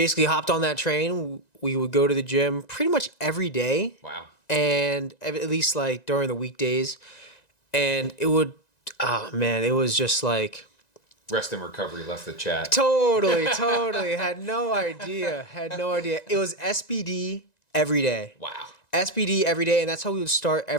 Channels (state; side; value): late; right; 1.9 ms